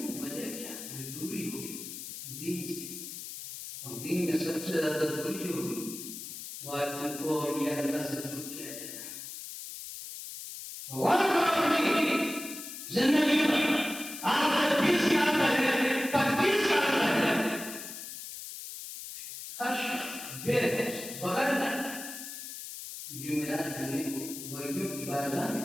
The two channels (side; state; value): left; noise; hiss, 10 dB below the sound